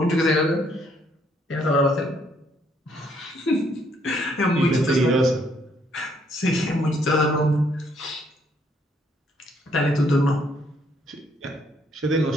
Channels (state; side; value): normal; both; correlation 0.69